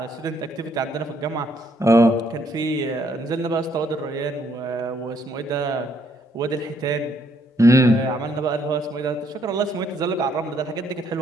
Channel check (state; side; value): normal; both; correlation 0.70